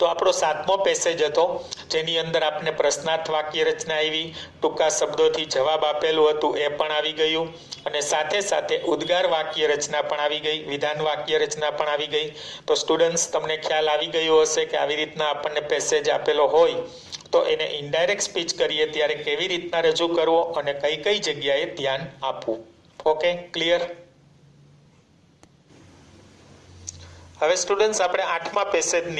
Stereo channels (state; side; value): identical; both; correlation 1.00